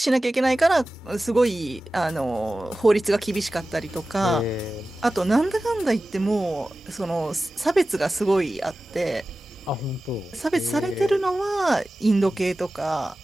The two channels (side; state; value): both; normal; correlation 0.95